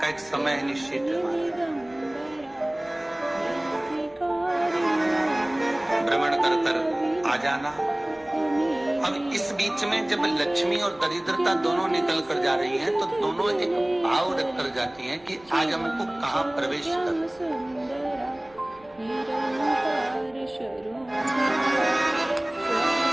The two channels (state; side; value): noise; right; rumble, 28 dB below the sound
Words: एक समय निश्चित है, भ्रमण कर कर आ जाना। अब इस बीच में जब लक्ष्मी और दरिद्रता दोनों निकल कर जा रही हैं, तो दोनों एक भाव रख कर जाती हैं कि आज हमको कहाँ प्रवेश कर,